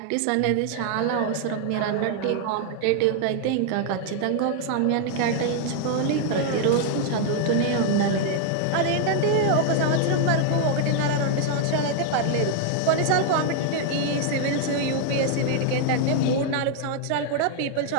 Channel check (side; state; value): both; different; correlation 0.00